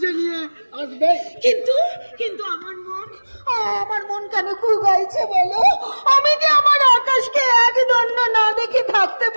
নিয়ে আসবে। কিন্তু কিন্তু আমার মন কেন কুগাইছে বলো? আমি যে আমার আকাশকে এক দণ্ড না দেখে থাকতে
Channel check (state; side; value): inverted; both; correlation -1.00